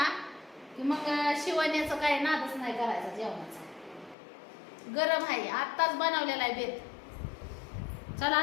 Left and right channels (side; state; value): right; drops out; at 4.2 s